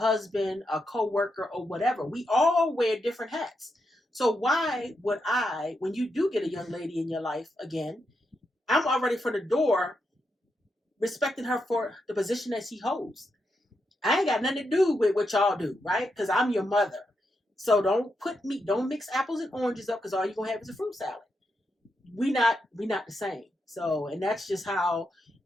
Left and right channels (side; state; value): both; normal; correlation 0.84